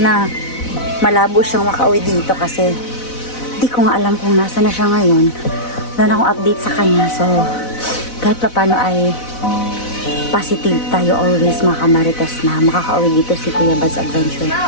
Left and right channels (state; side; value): late; right; 4.0 ms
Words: na malabo siyang makauwi dito kasi di ko nga alam kung nasa na siya ngayon. Wala na akong update sa kanya. So, kahit pa paano ay positive tayo always mga kamarites na makakauwi dito si Kuya Bad's Adventure.